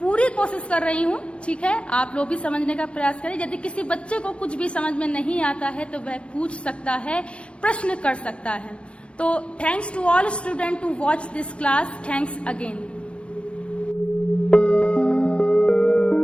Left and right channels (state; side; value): late; right; 0.060 ms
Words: कोशिश कर रही हूँ, ठीक है। आप लोग भी समझने का प्रयास करें। यदि किसी बच्चे को कुछ भी समझ में नहीं आता है तो वह पूछ सकता है, प्रश्न कर सकता है। तो thanks to all student to watch this class. Thanks again.